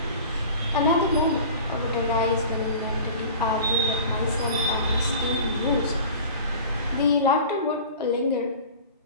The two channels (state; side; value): inverted; both; correlation -0.40